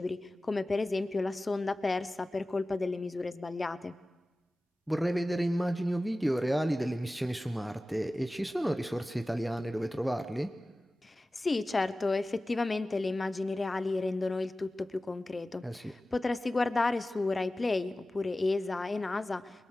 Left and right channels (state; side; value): normal; both; correlation 0.96